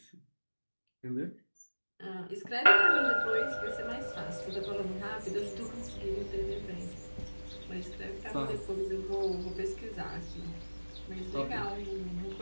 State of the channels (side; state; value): both; inverted; correlation -1.00